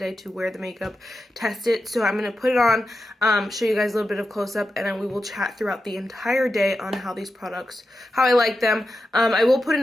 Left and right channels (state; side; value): normal; both; correlation 0.90